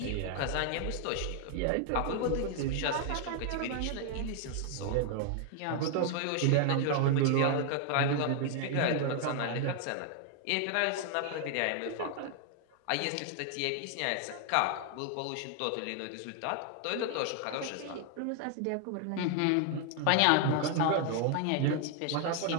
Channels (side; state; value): both; different; correlation 0.00